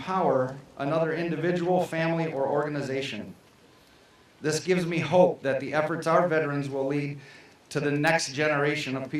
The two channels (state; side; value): identical; both; correlation 1.00